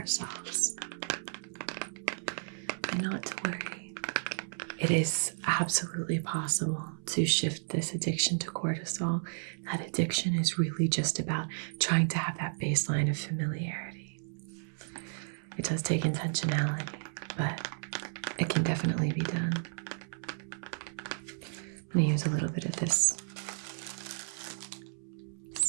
And not to worry. It is absolutely possible to shift this addiction to cortisol. That addiction is really just about trying to have that baseline of familiarity. It does take intentionality, but it can definitely be done. I'm going to use a little bit of this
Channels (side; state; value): left; silent; 56 dB below the other